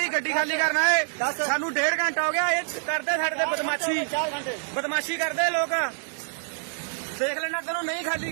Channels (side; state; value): left; silent; digital silence